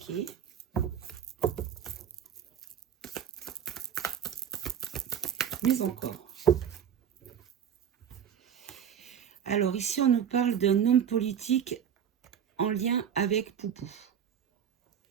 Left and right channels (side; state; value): left; quieter; 8.6 dB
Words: Mais encore. Alors ici, on nous parle d'un homme politique en lien avec Poupou.